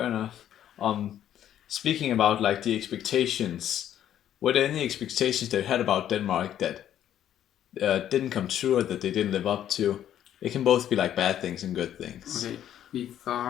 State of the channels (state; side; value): quieter; right; 10.9 dB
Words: enough. Um, Speaking about like the expectations, were there any expectations that you had about Denmark that didn't come true or that they didn't live up to? It can both be like bad things and good things. Okay, we